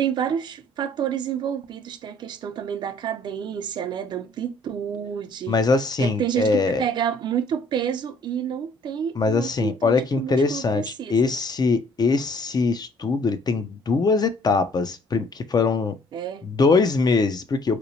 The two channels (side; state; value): both; normal; correlation 0.59